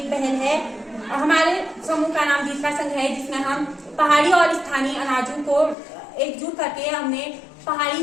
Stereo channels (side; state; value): right; drops out; at 5.8 s